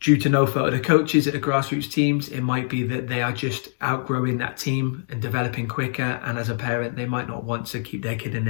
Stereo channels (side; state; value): right; silent; 63 dB below the other